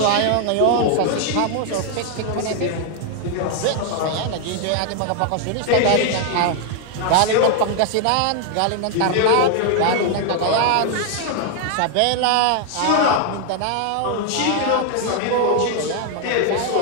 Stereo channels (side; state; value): both; different; correlation 0.00